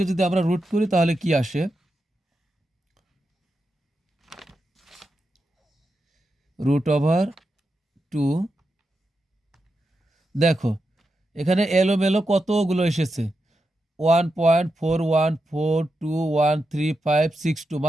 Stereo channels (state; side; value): normal; both; correlation 0.87